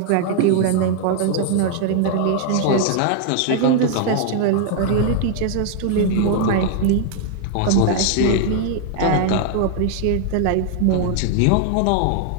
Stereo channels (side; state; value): both; different; correlation 0.00